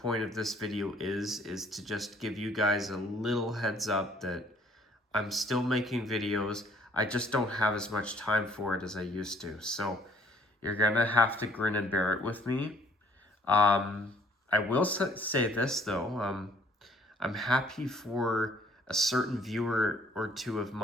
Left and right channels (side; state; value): both; normal; correlation 0.61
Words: of this video is to just give you guys a little heads up that I'm still making videos. I just don't have as much time for it as I used to. So you're gonna have to grin and bear it with me. I will say this though. I'm happy for a certain viewer or two of